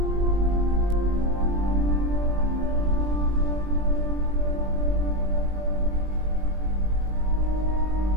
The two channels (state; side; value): late; left; 20 ms